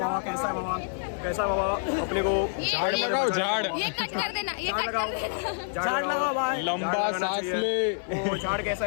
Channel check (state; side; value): silent; right; 60 dB below the other